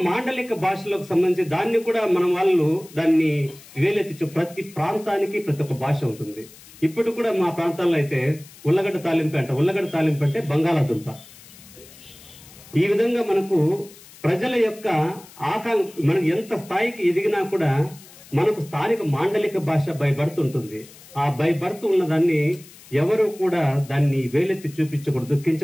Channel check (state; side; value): noise; left; hiss, 21 dB below the sound